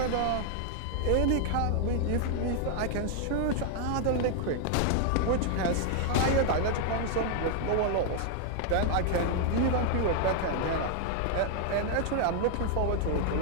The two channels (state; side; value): different; both; correlation 0.00